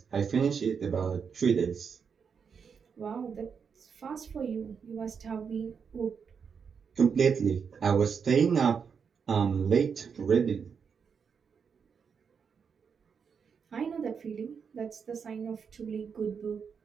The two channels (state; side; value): quieter; left; 6.4 dB